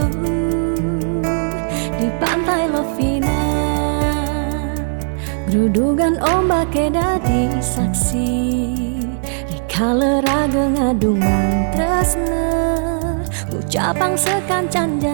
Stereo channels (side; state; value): left; silent; 67 dB below the other